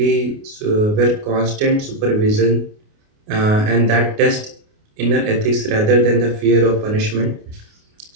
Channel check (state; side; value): late; left; 29 ms